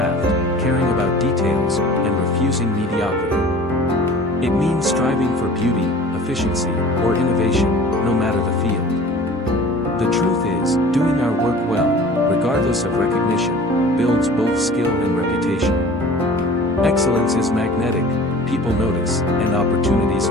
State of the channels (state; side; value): normal; both; correlation 0.44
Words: caring about details, and refusing mediocrity. It means striving for beauty, efficiency, or innovation, no matter the field. The truth is, doing our work well, regardless of recognition, builds both skill and reputation. Excellence is magnetic, people notice, and opportunities